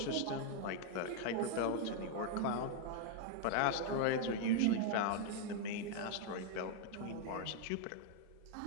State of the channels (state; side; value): different; both; correlation 0.00